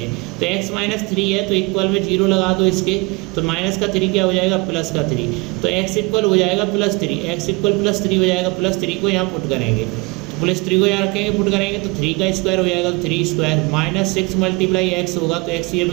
तो x माइनस 3 है तो इक्वल में 0 लगा दो इसके, तो माइनस का 3 क्या हो जाएगा प्लस का 3, तो x इक्वल हो जाएगा +3, x इक्वल +3 हो जाएगा, +3 को यहाँ पुट करेंगे, तो +3 को यहाँ रखेंगे पुट करेंगे तो 3 का स्क्वायर हो जाएगा, तो 3² माइनस 6 मल्टीप्लाई x होगा तो x ये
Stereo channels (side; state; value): left; quieter; 26.9 dB